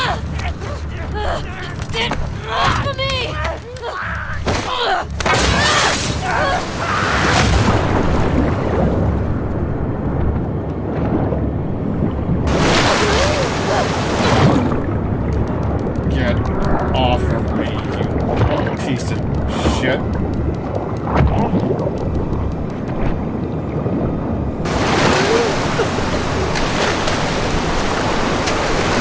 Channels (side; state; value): both; identical; correlation 1.00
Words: Get off of me, you piece of shit.